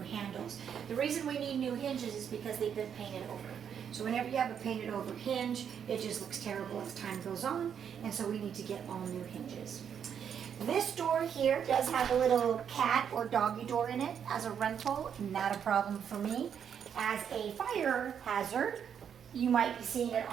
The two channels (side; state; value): left; quieter; 8.1 dB